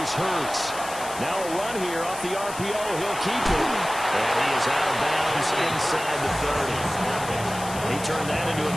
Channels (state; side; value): noise; left; hiss, 12 dB below the sound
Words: Hurts. Now a run here off the RPO. He'll keep it. And he is out of bounds inside the 30. He turned that into a